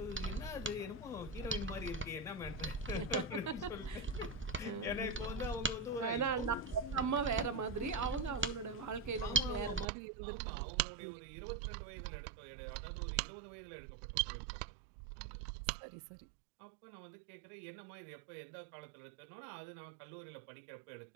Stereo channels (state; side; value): drops out; left; at 9.9 s